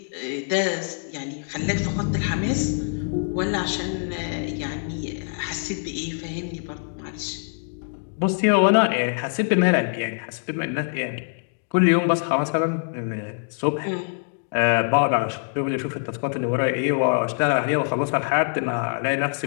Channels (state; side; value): silent; right; digital silence